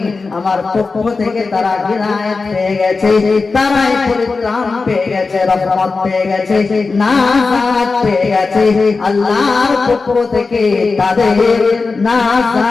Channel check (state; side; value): quieter; right; 4.2 dB